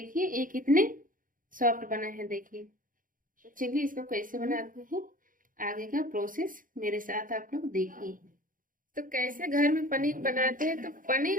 ये कितने सॉफ्ट बना है। देखिए तो चलिए इसको कैसे बनाते हैं, आगे का प्रोसेस मेरे साथ आप लोग देखिए। तो कैसे घर में पनीर बनाते हैं। तो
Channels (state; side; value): late; left; 0.40 ms